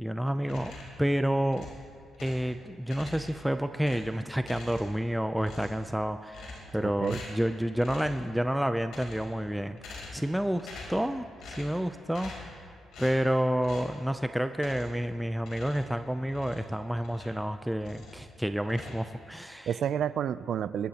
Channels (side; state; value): both; normal; correlation 0.96